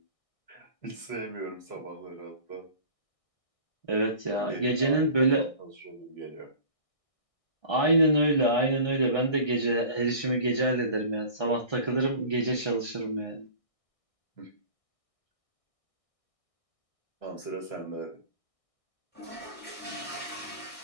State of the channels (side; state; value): right; late; 1.6 ms